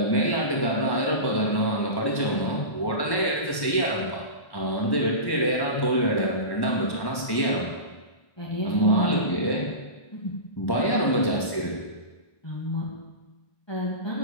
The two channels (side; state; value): right; late; 1.1 ms